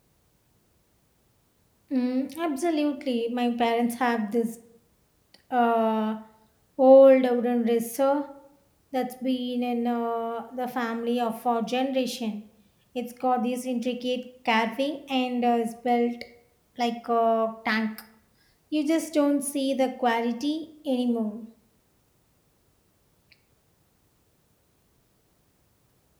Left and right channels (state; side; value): identical; both; correlation 1.00